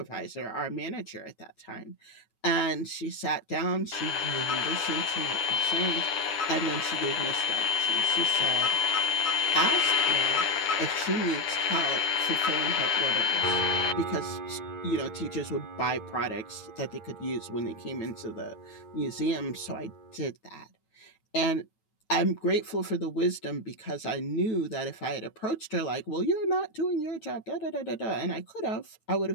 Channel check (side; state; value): right; late; 9.3 ms